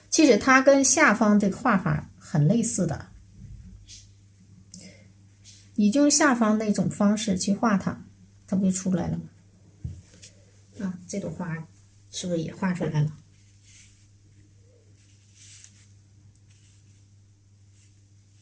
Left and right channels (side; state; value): both; identical; correlation 1.00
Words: 其实它跟下方这个画法很类似的，你就用下方那种方式去画它，它不就出来了吗？啊，这朵花是不是也画出来了？